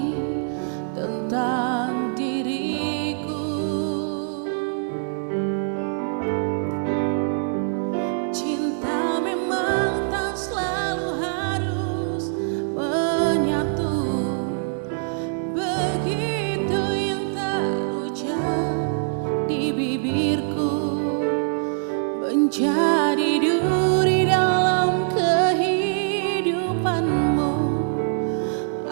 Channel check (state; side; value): silent; left; 63 dB below the other